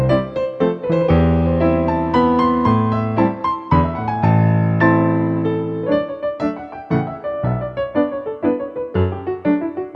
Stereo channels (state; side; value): identical; both; correlation 1.00